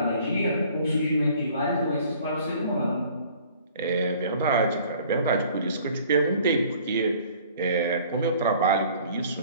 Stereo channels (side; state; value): both; inverted; correlation -0.53